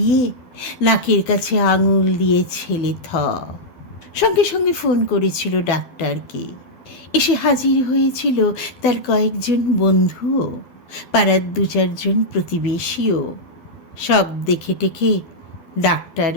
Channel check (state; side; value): late; right; 12 ms